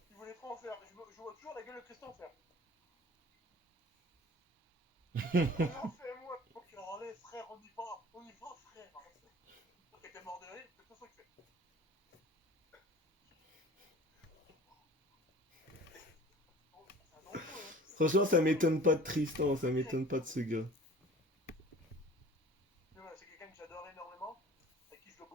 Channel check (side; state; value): both; normal; correlation 0.45